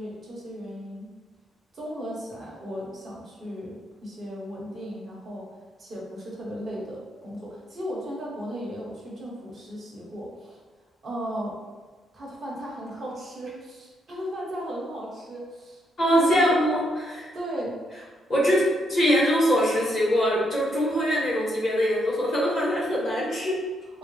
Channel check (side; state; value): both; normal; correlation 0.77